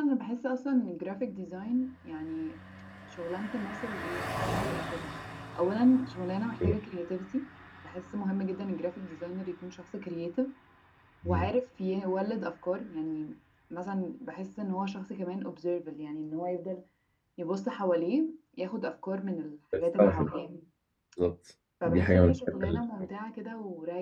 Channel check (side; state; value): both; identical; correlation 1.00